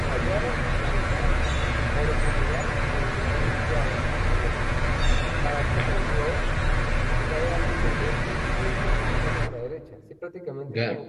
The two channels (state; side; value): identical; both; correlation 1.00